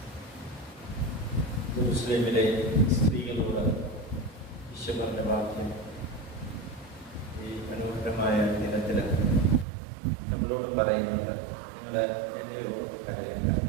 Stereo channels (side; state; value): left; drops out; at 9.7 s